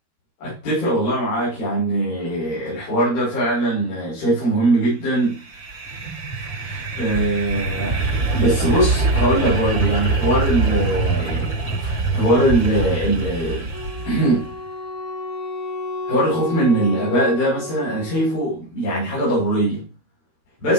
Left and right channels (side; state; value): right; late; 13 ms